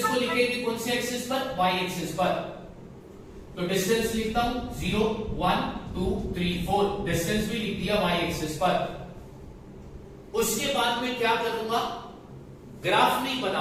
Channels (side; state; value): both; identical; correlation 1.00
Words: को लिखेंगे कौन से एक्सिस पर? वाई एक्सिस पर। तो डिस्टेंस लिखता हूं 0, 1, 2, 3, 4। डिस्टेंस भी लिख दिया वाई एक्सिस पर। उसके बाद मैं क्या करूंगा? ग्राफ नहीं